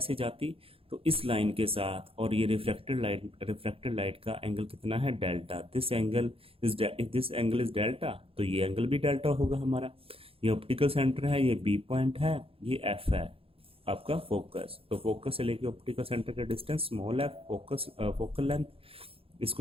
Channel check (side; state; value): left; late; 0.27 ms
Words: जाती। तो इस लाइन के साथ और ये रिफ्लेक्टेड लाइट का एंगल कितना है, delta. This angle is delta, तो ये एंगल भी डेल्टा होगा हमारा। ये ऑप्टिकल सेंटर है, ये बी पॉइंट है, ये एफ है आपका फोकस। तो फोकस से लेके ऑप्टिकल सेंटर का distance small f, focal length,